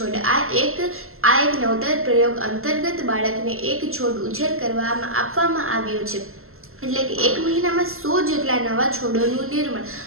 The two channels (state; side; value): late; left; 0.62 ms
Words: આ એક નવતર પ્રયોગ અંતર્ગત બાળકને એક છોડ ઉછેર કરવામાં આપવામાં આવ્યો છે. એટલે કે એક મહિનામાં 100 જેટલા નવા છોડોનું નિર્માણ